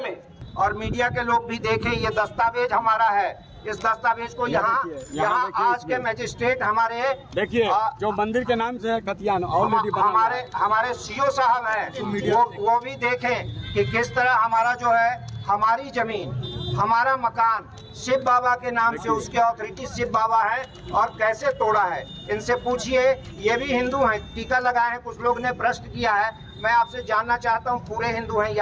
में? और मीडिया के लोग भी देखें, ये दस्तावेज हमारा है। इस दस्तावेज को यहाँ आज के मजिस्ट्रेट हमारे देखिए जो मंदिर के नाम से कतियान ऑलरेडी हमारे सीओ साहब हैं, वो भी देखें कि किस तरह हमारा जो है हमारी जमीन, हमारा मकान शिव बाबा के नाम से, उसके अथॉरिटी शिव बाबा है और कैसे तोड़ा है। इनसे पूछिए, ये भी हिंदू हैं, टीका लगाए हैं। कुछ लोग ने प्रश्न किया है, मैं आपसे जानना चाहता हूँ पूरे हिंदू हैं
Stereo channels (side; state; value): both; identical; correlation 1.00